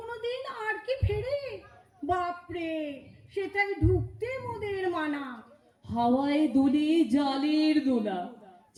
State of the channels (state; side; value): identical; both; correlation 1.00